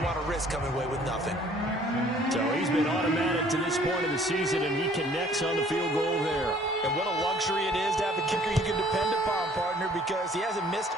want to risk coming away with nothing. So he's been automatic to this point of the season, and he connects on the field goal there. And what a luxury it is to have a kicker you can depend upon, partner, because he hasn't missed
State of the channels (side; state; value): both; normal; correlation 0.57